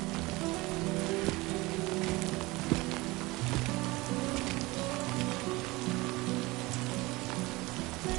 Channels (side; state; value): left; quieter; 21.9 dB